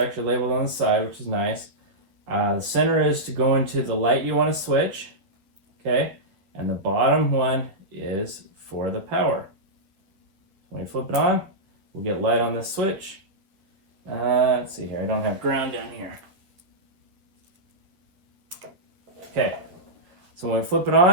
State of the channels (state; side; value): late; left; 11 ms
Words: labeled on the side, which is nice. The center is to go into the light you want to switch. Okay. And the bottom one is for the power. When you flip it on, we'll get light on this switch. Let's see here. I don't have ground down here. Okay. So when we flip it